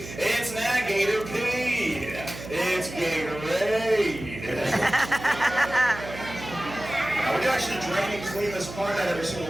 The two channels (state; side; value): noise; right; hum, 12 dB below the sound